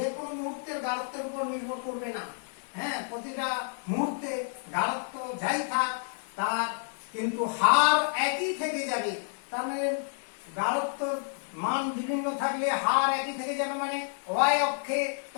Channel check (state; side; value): silent; right; digital silence